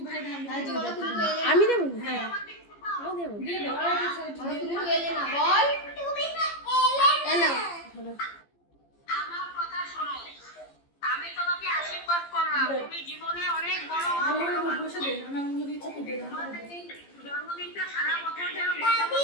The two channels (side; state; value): right; late; 15 ms